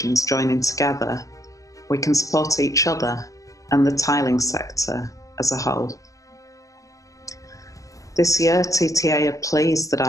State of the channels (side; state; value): right; late; 0.16 ms